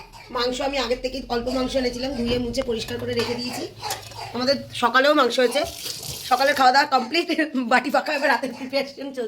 মাংস আমি আগের থেকে অল্প মাংস এনেছিলাম, ধুয়ে মুছে পরিষ্কার করে রেখে দিয়েছি। আমাদের সকালেও মাংস হয়েছে, সকালের খাওয়া দাওয়া কমপ্লিট, বাটি ফাঁকা, এবার রাতের প্রিপারেশন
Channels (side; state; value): both; identical; correlation 1.00